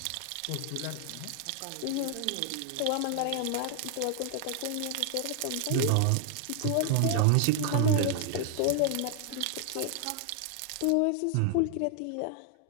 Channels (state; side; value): different; both; correlation 0.00